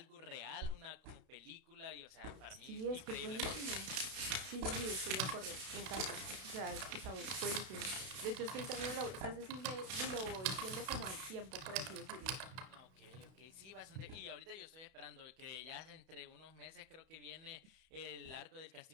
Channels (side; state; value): left; late; 32 ms